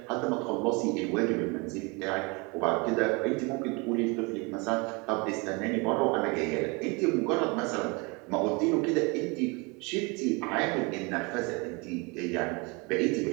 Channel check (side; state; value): left; quieter; 28.8 dB